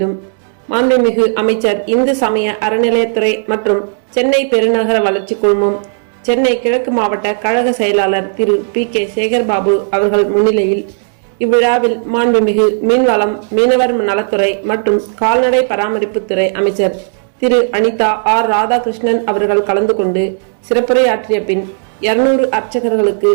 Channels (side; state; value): left; silent; digital silence